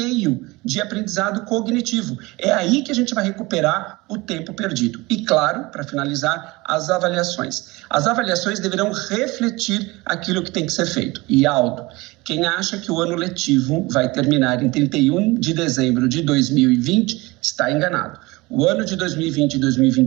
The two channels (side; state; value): left; quieter; 22.5 dB